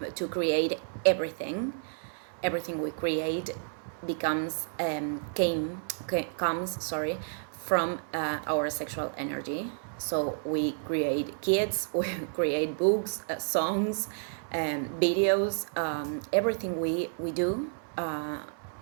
to create everything. Everything we create comes from our sexual energy. So we create kids, we create books, songs, videos, everything we do.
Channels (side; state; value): left; silent; 57 dB below the other